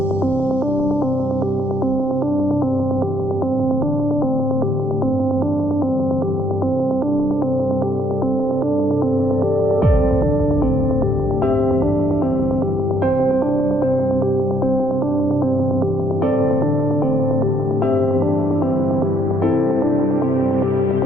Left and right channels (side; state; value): both; normal; correlation 0.70